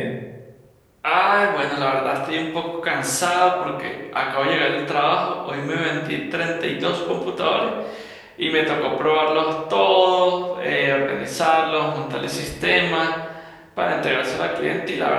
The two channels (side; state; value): both; identical; correlation 1.00